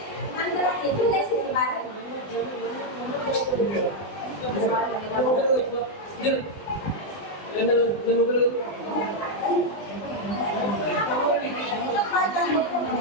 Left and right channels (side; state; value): right; late; 20 ms